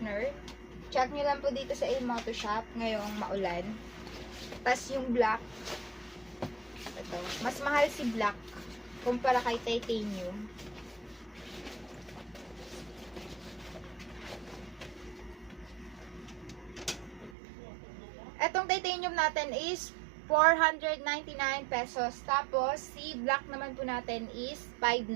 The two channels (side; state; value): left; drops out; at 17.4 s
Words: Check nyo lang po dito sa Ilmoto Shop ngayong maulan. Tapos yung black, ito, mas mahal si black kumpara kay titanium. Etong titanium natin is 499 pesos. Tapos si black naman po natin is